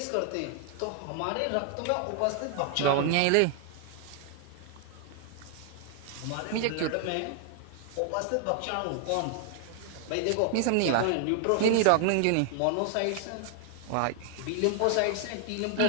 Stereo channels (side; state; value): both; different; correlation 0.00